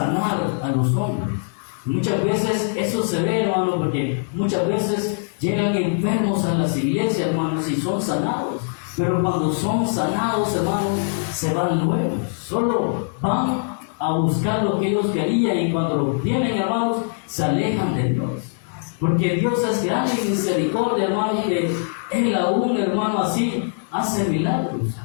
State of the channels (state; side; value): silent; right; digital silence